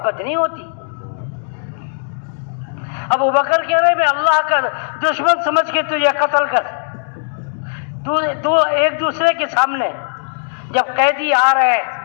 نہیں ہوتی. ابو بکر کہہ رہے میں اللہ کا دشمن سمجھ کے تجھے قتل کر. دو ایک دوسرے کے سامنے جب قیدی آ رہے ہیں،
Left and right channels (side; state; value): right; silent; digital silence